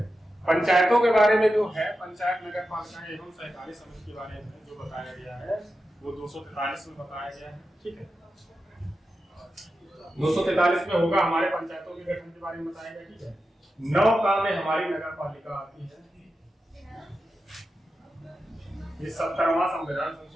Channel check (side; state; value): both; normal; correlation 0.90